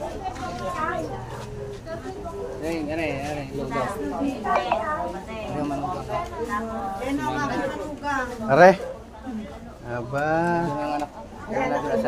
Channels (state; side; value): identical; both; correlation 1.00